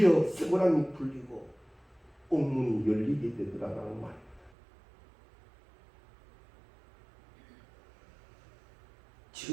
쇠고랑이 풀리고 옥문이 열리게 되더라라는 말입니다.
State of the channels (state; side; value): drops out; left; at 4.5 s